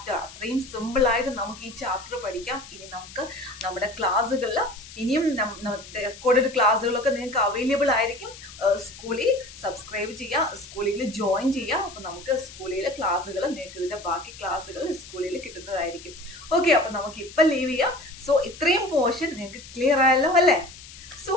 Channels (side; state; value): left; noise; hiss, 17 dB below the sound